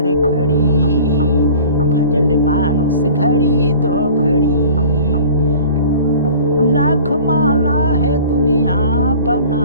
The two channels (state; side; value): inverted; both; correlation -0.44